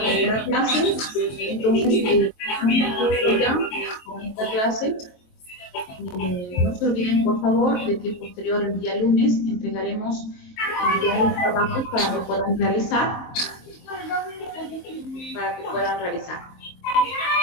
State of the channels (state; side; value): late; right; 23 ms